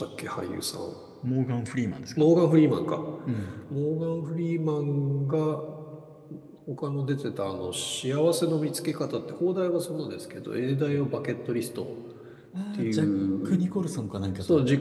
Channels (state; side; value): identical; both; correlation 1.00